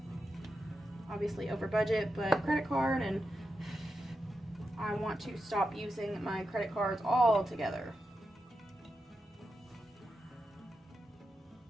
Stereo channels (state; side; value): normal; both; correlation 0.88